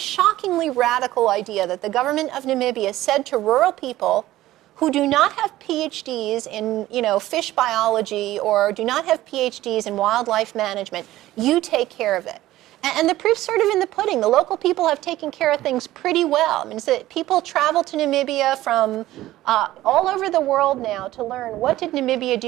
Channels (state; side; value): quieter; left; 15.5 dB